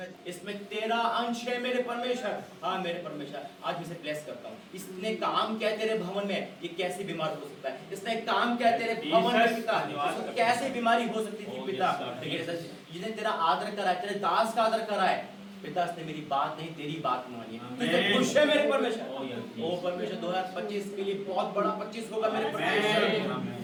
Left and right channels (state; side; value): identical; both; correlation 1.00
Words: इसमें तेरा अंश है मेरे परमेश्वर। हाँ मेरे परमेश्वर, आज मैं इसे ब्लेस करता हूँ। इसने काम किया तेरे भवन में, ये कैसी बीमार हो सकता है? इसने काम किया तेरे भवन में पिता, इसको कैसे बीमारी हो सकती थी पिता? जिसने तेरा आदर करा है, तेरे दास का आदर करा है पिता, इसने मेरी बात नहीं तेरी बात मानी है। तुझे खुश है मेरे परमेश्वर। ओ परमेश्वर 2025 के लिए बहुत बड़ा 25 होगा मेरे